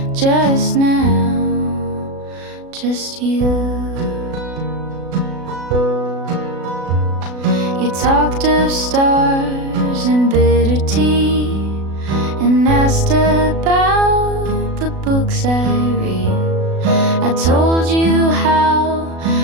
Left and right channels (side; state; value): left; late; 36 ms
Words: just now, just you. You talked of stars and bitter tea, and asked about the books I read. I told you how